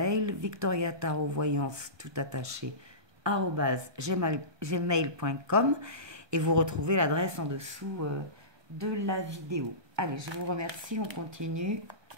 victoriatarovoyance tout attaché @gmail.com et vous retrouvez l'adresse en dessous de la vidéo. Allez, je vous remercie, on continue.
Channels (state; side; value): late; left; 1.2 ms